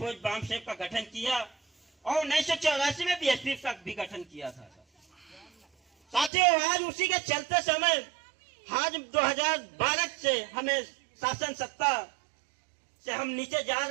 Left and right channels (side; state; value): left; drops out; at 6.3 s